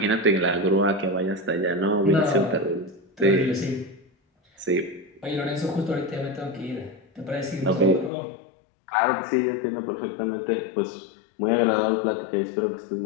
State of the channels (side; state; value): right; drops out; at 8.1 s